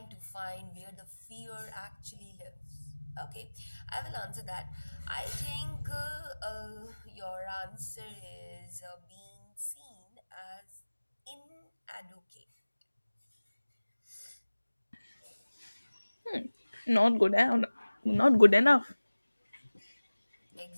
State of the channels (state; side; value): inverted; both; correlation -1.00